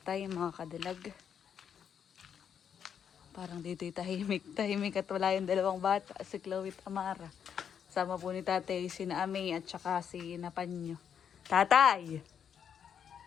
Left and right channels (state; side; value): quieter; right; 8.0 dB